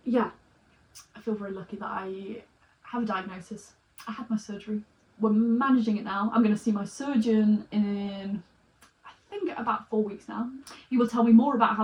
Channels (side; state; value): both; identical; correlation 1.00